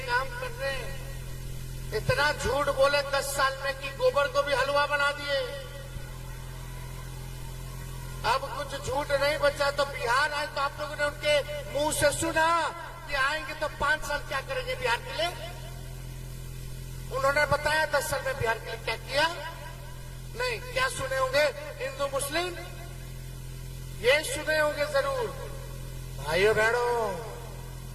काम कर रहे हैं, इतना झूठ बोले 10 साल में कि गोबर को भी हलवा बना दिए। अब कुछ झूठ नहीं बचा। तो बिहार आए तो आप लोगों ने उनके मुंह से सुना कि आएंगे तो 5 साल क्या करेंगे बिहार के लिए। उन्होंने बताया 10 साल में बिहार के लिए क्या किया। नहीं, क्या सुने होंगे हिंदू मुस्लिम, ये सुने होंगे जरूर। भाइयों बहनों,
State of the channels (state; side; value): identical; both; correlation 1.00